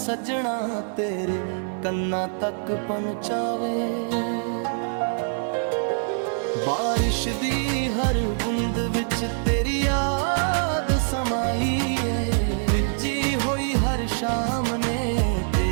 ਤੇਰੇ ਕੰਨਾਂ ਤੱਕ ਪਹੁੰਚਾਵੇ। ਬਾਰਿਸ਼ ਦੀ ਹਰ ਬੂੰਦ ਵਿੱਚ ਤੇਰੀ ਯਾਦ ਸਮਾਈ ਏ, ਭਿੱਜੀ ਹੋਈ ਹਰ ਸ਼ਾਮ ਨੇ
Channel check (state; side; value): silent; left; digital silence